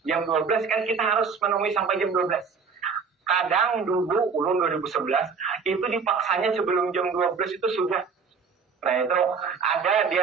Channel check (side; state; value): left; quieter; 5.5 dB